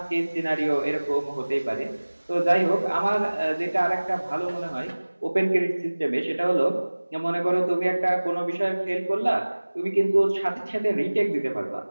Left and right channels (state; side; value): inverted; both; correlation -1.00